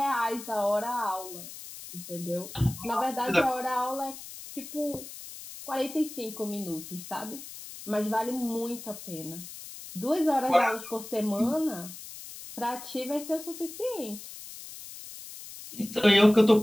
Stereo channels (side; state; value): left; noise; hiss, 13 dB below the sound